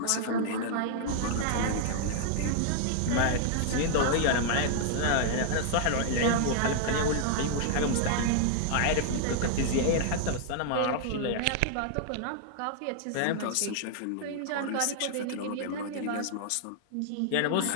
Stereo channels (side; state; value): both; different; correlation -0.01